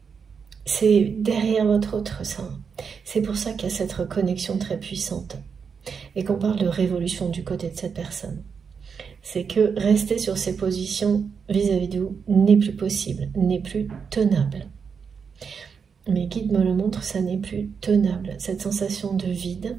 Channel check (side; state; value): left; quieter; 6.1 dB